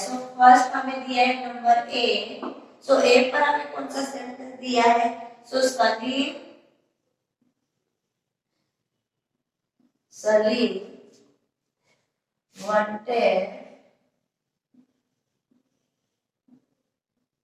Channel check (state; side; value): identical; both; correlation 1.00